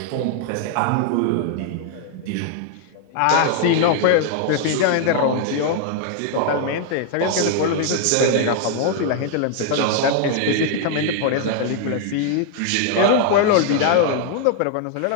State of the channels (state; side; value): different; both; correlation 0.00